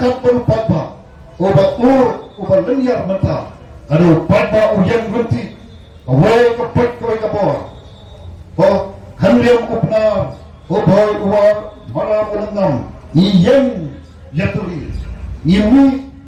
papa oba linear mata adu papa uyan gunti away kapet koy kapor kanliam upna boy uwar malam ulanam iyeng yaturi yemi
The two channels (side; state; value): both; identical; correlation 1.00